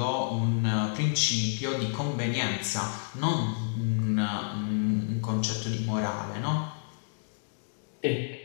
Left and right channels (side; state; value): right; silent; digital silence